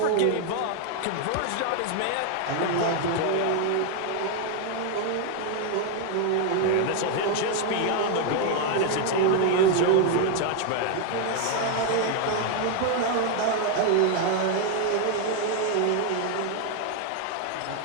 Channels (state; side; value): different; both; correlation 0.01